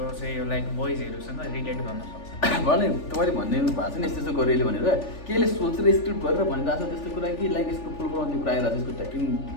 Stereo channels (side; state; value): right; late; 3.4 ms